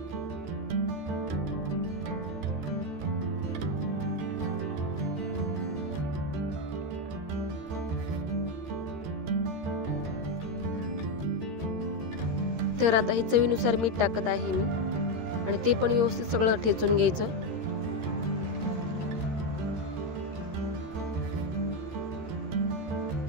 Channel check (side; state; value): left; late; 13 ms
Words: तर आता हे चवीनुसार मीठ टाकत आहे मी आणि ते पण व्यवस्थित सगळं ठेचून घ्यायचं.